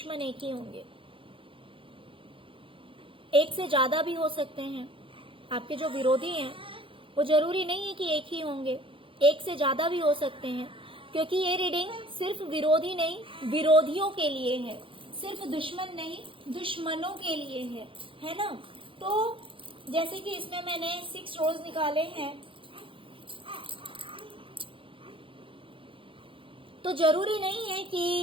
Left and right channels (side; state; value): left; late; 0.25 ms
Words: एक ही होंगे, एक से ज्यादा भी हो सकते हैं। आपके जो विरोधी हैं वो जरूरी नहीं है कि एक ही होंगे, एक से ज्यादा भी हो सकते हैं, क्योंकि ये रीडिंग सिर्फ विरोधी नहीं, विरोधियों के लिए है, सिर्फ दुश्मन नहीं, दुश्मनों के लिए है ना। तो जैसे कि इसमें मैंने 6 रोज निकाले हैं, तो जरूरी नहीं है कि